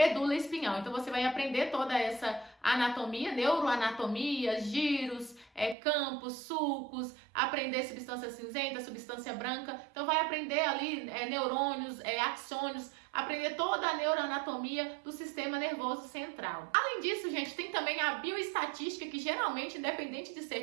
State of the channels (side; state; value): left; drops out; at 5.8 s